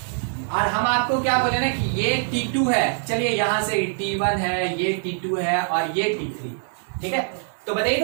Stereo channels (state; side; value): silent; left; 63 dB below the other